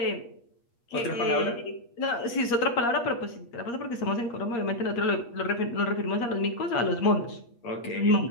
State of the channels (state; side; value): late; right; 8.5 ms